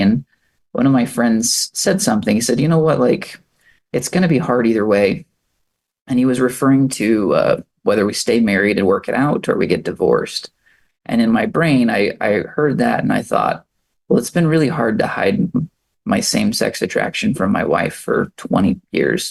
And one of my friends said something. He said, you know what, like, it's going to be hard either way. And he was referring to whether we stay married and work it out or we get divorced. And in my brain, I heard that and I thought, well, it's been really hard to hide my same-sex attraction from my wife for 20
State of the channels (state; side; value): identical; both; correlation 1.00